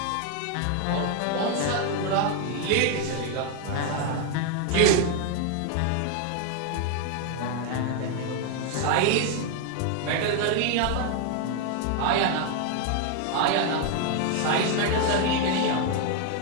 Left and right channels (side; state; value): both; different; correlation 0.01